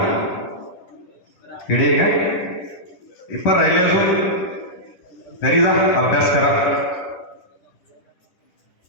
किडे काय पेपर राहिले अजून, घरी जा, अभ्यास करा,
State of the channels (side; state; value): right; late; 10 ms